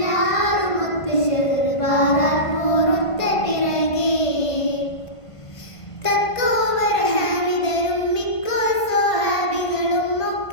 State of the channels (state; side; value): late; right; 1.5 ms